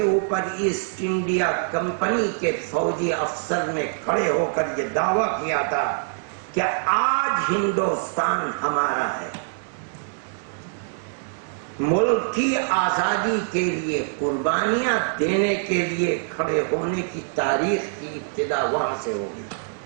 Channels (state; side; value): silent; left; digital silence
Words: اوپر ایسٹ انڈیا کمپنی کے فوجی افسر نے کھڑے ہو کر یہ دعویٰ کیا تھا کہ آج ہندوستان ہمارا ہے۔ ملک کی آزادی کے لیے قربانیاں دینے کے لیے کھڑے ہونے کی تاریخ کی ابتدا وہاں سے ہوگی۔